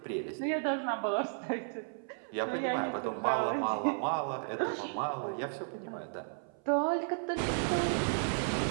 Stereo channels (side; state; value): left; silent; 55 dB below the other